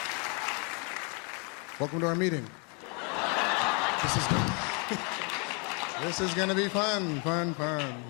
Welcome to our meeting. This is gonna be fun.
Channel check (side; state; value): right; quieter; 35.4 dB